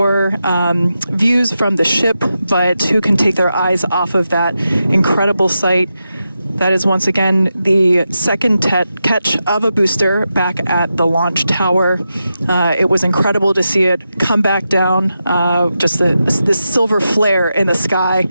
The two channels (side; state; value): both; inverted; correlation -0.89